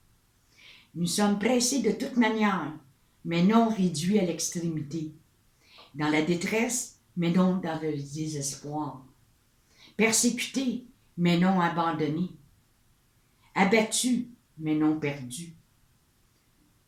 Nous sommes pressés de toute manière, mais non réduits à l'extrémité, dans la détresse, mais non dans le désespoir, persécutés, mais non abandonnés, abattus, mais non perdus,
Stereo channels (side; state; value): both; identical; correlation 1.00